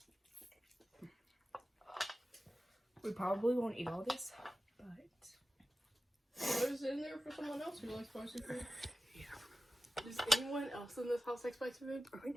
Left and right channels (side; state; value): both; normal; correlation 0.94